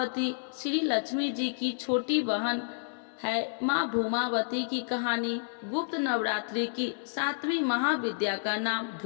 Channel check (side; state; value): right; silent; 58 dB below the other